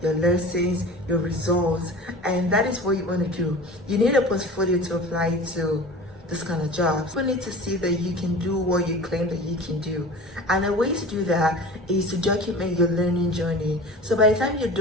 your lessons, your results, and that is what you want to do. You need a portfolio to apply to this kind of jobs. You need to see that you can do what you claim that you can do. And the way to do that is to document your learning journey. So by the time you're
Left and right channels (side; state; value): both; normal; correlation 0.37